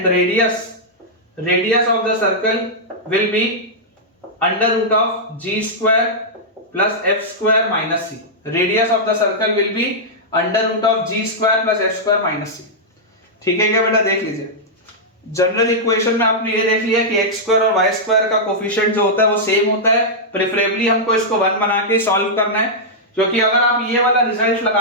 radius of the circle will be under root of g square plus f square minus c, radius of the circle will be under root of g square plus f square minus c। ठीक है क्या बेटा, देख लीजिए general equation में आपने ये देख लिया कि x स्क्वायर और y स्क्वायर का कोफिशिएंट जो होता है वो सेम होता है। प्रेफरेबली हमको इसको 1 बना के सॉल्व करना है, क्योंकि अगर आप ये वाला रिजल्ट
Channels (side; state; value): both; normal; correlation -0.09